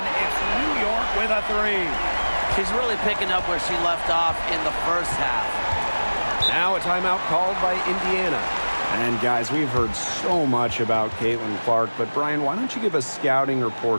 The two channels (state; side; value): inverted; both; correlation -1.00